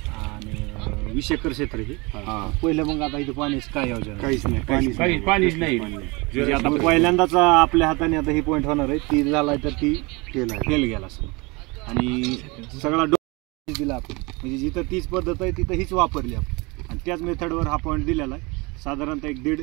आणि 20 एकर क्षेत्र हे. पहिलं मग आता इथं पाण्याचं काय योजना? काहीच नाही, पाणीच नाही. म्हणजे आता पहिल्यांदाच आपल्या हाताने आता ही पॉईंट होणार आहे. ती झाला तर ती फेल गेला असं. आणि सगळा दिला आपण, म्हणजे जिथं तीच पद्धत आहे तिथं हीच वापरली आपण आणि त्याच मेथडवर हा पॉईंट दिलेला आहे. साधारणतः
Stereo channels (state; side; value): quieter; left; 26.5 dB